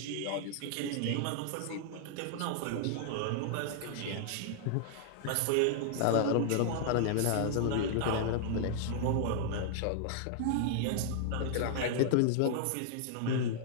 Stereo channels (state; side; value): different; both; correlation -0.01